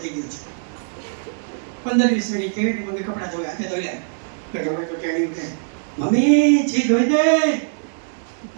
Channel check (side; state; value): left; silent; digital silence